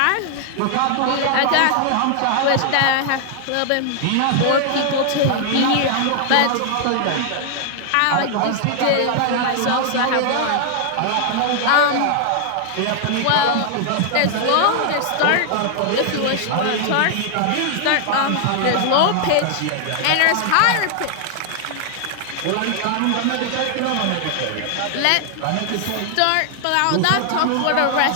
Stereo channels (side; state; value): both; different; correlation 0.00